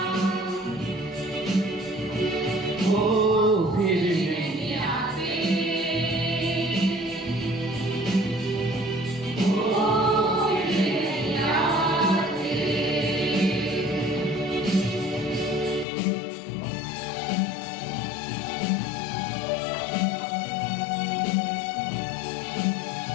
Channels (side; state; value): right; drops out; at 15.9 s